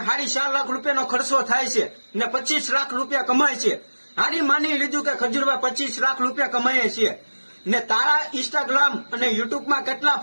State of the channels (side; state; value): both; inverted; correlation -1.00